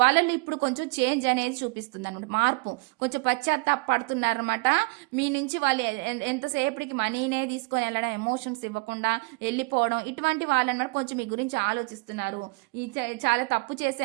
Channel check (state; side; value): quieter; left; 27.8 dB